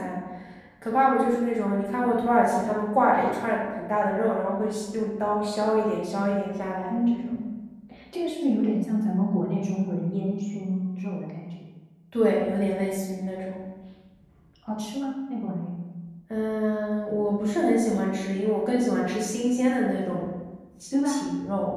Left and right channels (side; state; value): both; identical; correlation 1.00